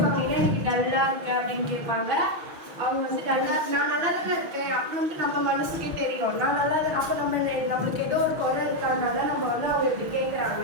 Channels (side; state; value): left; late; 6.3 ms